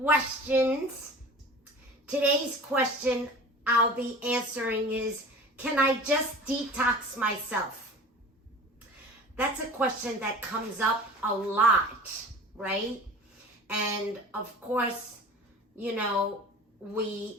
Today's question I'll be answering is, can I just detox myself? That's a question that comes up a lot, right? And of course, you know,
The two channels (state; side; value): normal; both; correlation 0.39